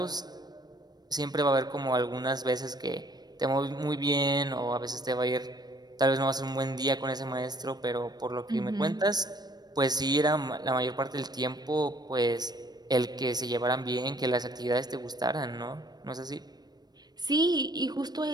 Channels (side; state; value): left; late; 0.19 ms